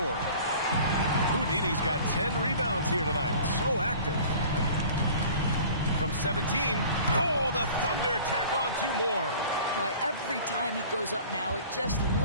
Houdini's got 10 rebounds here tonight. So active. From 17. Oh, the Thunder tack on 2 more. Boy, every time he goes up now, it just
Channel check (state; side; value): inverted; both; correlation -0.45